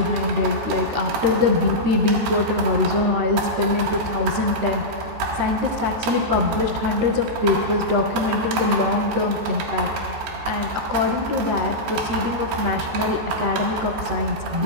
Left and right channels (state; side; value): late; left; 14 ms